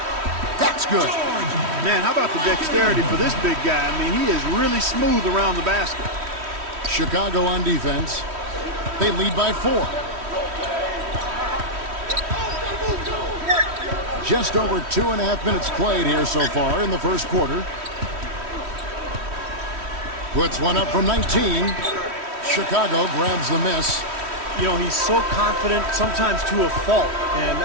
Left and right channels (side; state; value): left; late; 3.1 ms